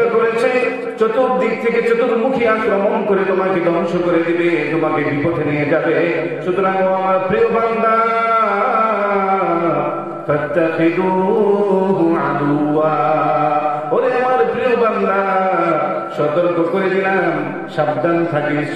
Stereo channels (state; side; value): identical; both; correlation 1.00